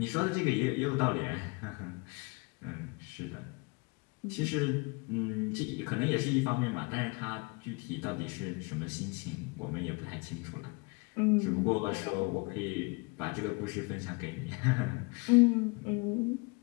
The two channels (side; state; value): right; quieter; 29.7 dB